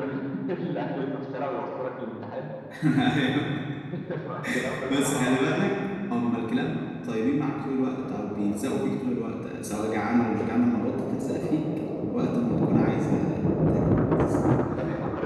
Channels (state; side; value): identical; both; correlation 1.00